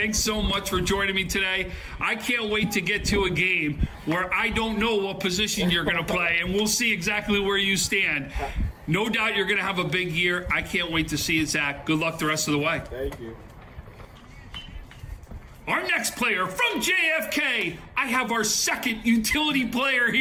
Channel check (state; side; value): identical; both; correlation 1.00